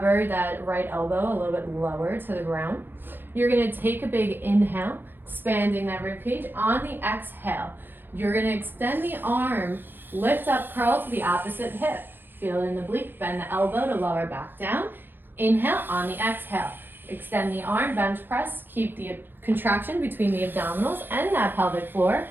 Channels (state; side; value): late; left; 0.095 ms